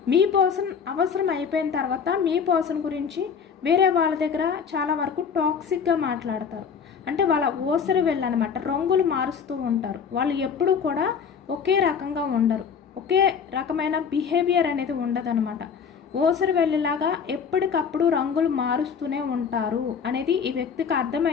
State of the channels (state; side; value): quieter; right; 6.6 dB